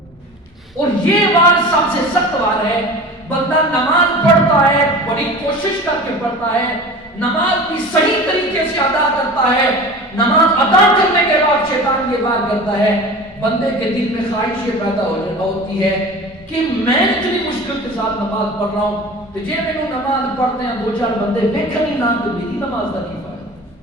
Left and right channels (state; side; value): normal; both; correlation 0.37